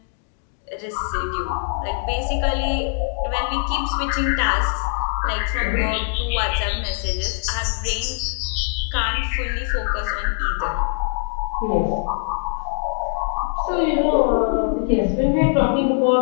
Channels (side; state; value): right; silent; 64 dB below the other